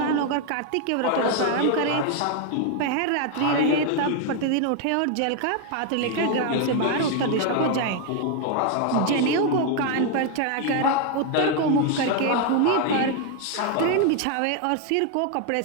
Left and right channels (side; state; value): both; different; correlation 0.01